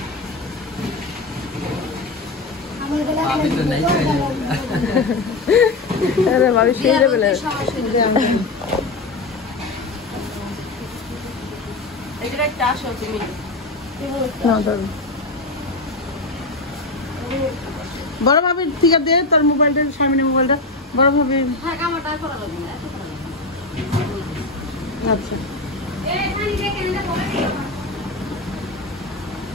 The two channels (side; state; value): right; quieter; 3.2 dB